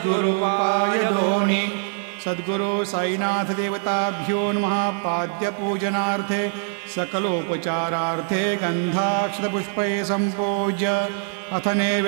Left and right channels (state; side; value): silent; left; digital silence